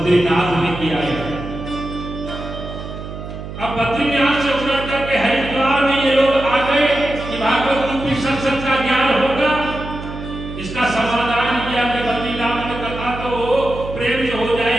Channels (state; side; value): noise; right; hum, 10 dB below the sound